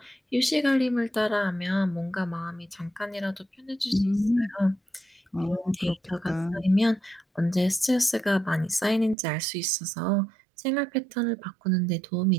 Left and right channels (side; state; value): left; drops out; at 9.2 s